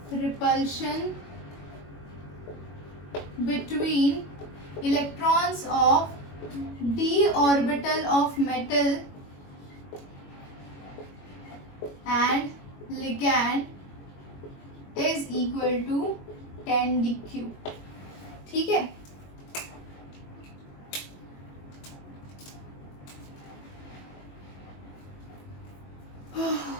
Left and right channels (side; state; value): right; late; 21 ms